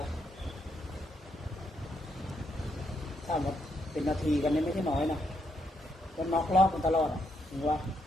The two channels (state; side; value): normal; both; correlation 0.78